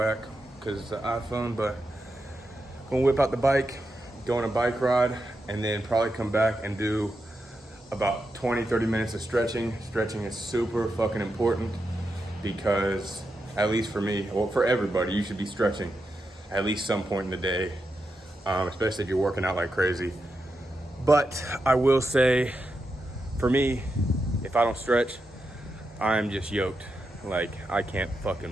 because it's an iPhone, but gonna whip out the bike, go on a bike ride, and then probably come back and do about 20-30 minutes of stretching. Stretching is super fucking important because, at least for me, well, for everybody, you should be stretching at least some point in the day, especially if you're working out like crazy. But I will say, for me, if I don't stretch, I'm just yoked. Like, I can't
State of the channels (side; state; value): both; normal; correlation 0.87